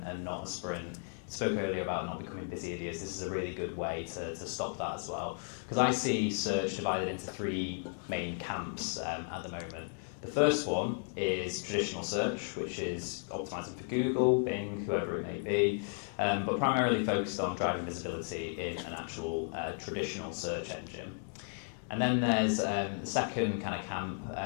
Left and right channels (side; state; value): right; silent; 55 dB below the other